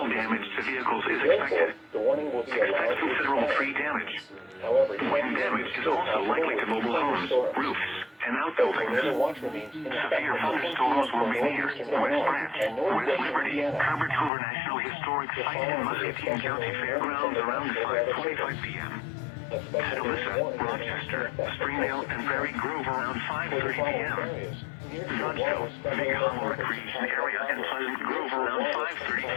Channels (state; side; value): drops out; right; at 14.3 s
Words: damage to vehicles is expected. Expect considerable tree damage. Wind damage is also likely to mobile homes, roofs, and outbuildings. Severe thunderstorms will be near West Branch, West Liberty, Cover National Historic Site, and Muscatine County Fairgrounds around 5:45 p.m. Atalissa, Rochester, Springdale, and Prairie Grove around 5:30 p.m. Nutsville, Big Hollow Recreation Area, and Pleasant Grove around